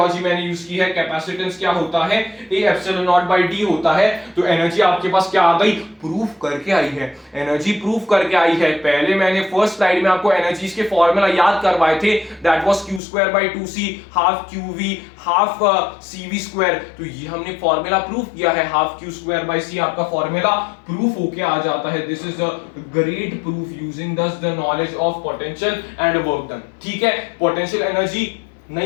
मैंने यूज की है। कैपेसिटेंस क्या होता है, a epsilon naught by d होता है, तो एनर्जी आपके पास क्या आ गई, प्रूफ करके आई है, एनर्जी प्रूफ करके आई है। पहले मैंने फर्स्ट स्लाइड में आपको एनर्जीज के फॉर्मूला याद करवाए थे, that was q²/2c, half qv half cv²। तो ये हमने फॉर्मूला प्रूफ किया है, हाफ q²/c आपका फॉर्मूला प्रूफ होके आ जाता है। This is a great proof using thus the knowledge of potential and work done. ठीक है, पोटेंशियल एनर्जी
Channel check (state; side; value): drops out; right; at 13.0 s